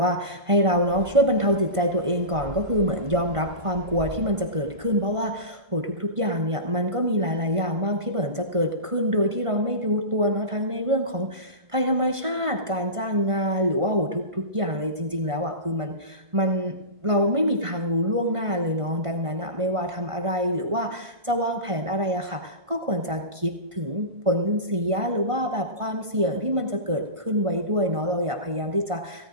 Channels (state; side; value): late; left; 1.5 ms